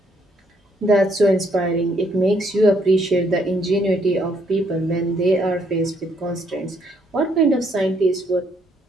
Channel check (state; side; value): normal; both; correlation 0.70